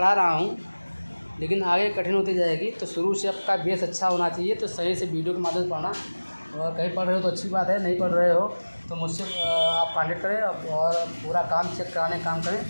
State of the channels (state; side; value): inverted; both; correlation -1.00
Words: रहा हूँ, लेकिन आगे कठिन होती जाएगी। तो शुरू से आपका बेस अच्छा होना चाहिए। तो सही से वीडियो के माध्यम से पढ़ना, और कहीं पढ़ रहे हो तो अच्छी बात है, नहीं पढ़ रहे हो तो मुझसे आप कॉन्टेक्ट करें और पूरा काम चेक कराने का काम करें,